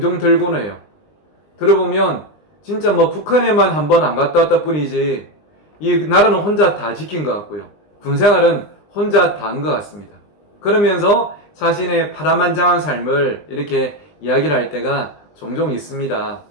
들곤 해요. 들어보면 진짜 북한에만 한 번 안 갔다 왔다 뿐이지 이 나라는 혼자 다 지킨 것 같고요. 군생활은 혼자 다 한 것 같습니다. 그러면서 자신의 파란만장한 삶을 이렇게 이야기를 할 때가 종종 있습니다.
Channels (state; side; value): late; right; 20 ms